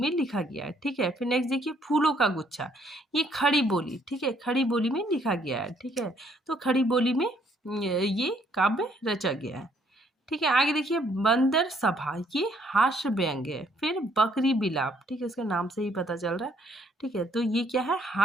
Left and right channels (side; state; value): both; normal; correlation 0.67